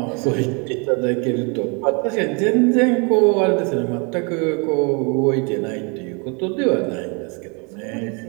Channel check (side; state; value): left; quieter; 33.3 dB